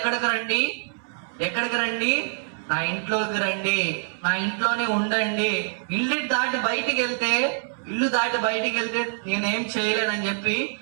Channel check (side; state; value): left; silent; 62 dB below the other